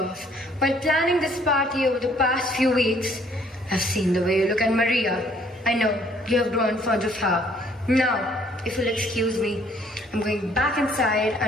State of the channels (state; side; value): normal; both; correlation 0.62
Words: While planning this party over the past few weeks, I've seen the way you look at Maria. I know, you have grown fond of her. Now, if you'll excuse me, I'm going back inside,